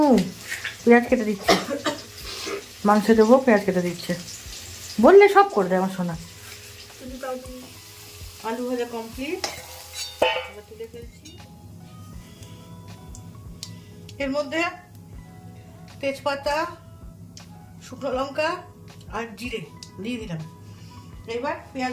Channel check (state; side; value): identical; both; correlation 1.00